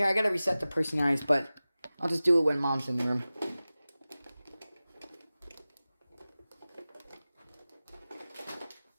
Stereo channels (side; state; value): both; inverted; correlation -0.97